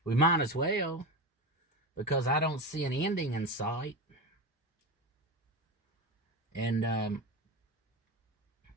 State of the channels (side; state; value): both; normal; correlation 0.21